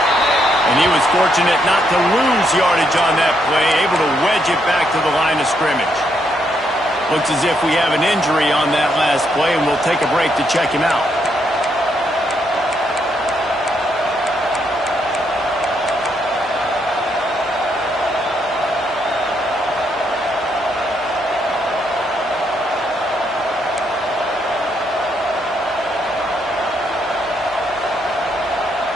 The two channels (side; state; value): both; normal; correlation 0.76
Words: And he was fortunate not to lose yardage on that play, able to wedge it back to the line of scrimmage. Looks as if we have an injury on that last play, and we'll take a break to check him out.